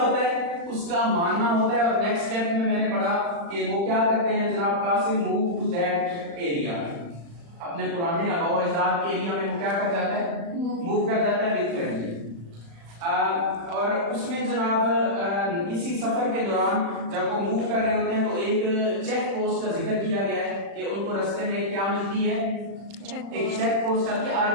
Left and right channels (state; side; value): late; left; 35 ms